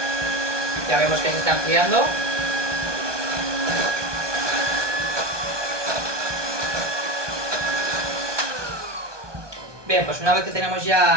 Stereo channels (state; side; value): late; left; 1.2 ms